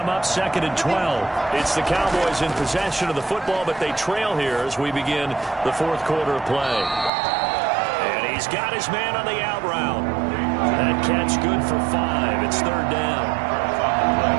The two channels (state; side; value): drops out; left; at 7.1 s